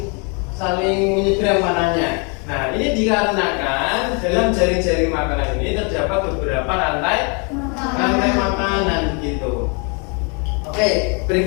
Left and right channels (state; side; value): quieter; right; 34.7 dB